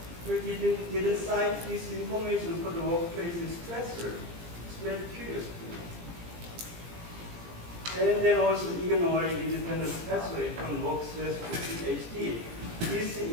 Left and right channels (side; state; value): left; late; 17 ms